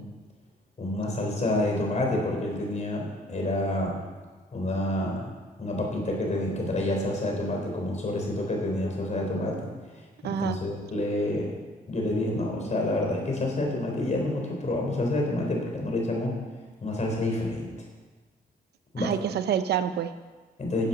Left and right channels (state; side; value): normal; both; correlation 0.55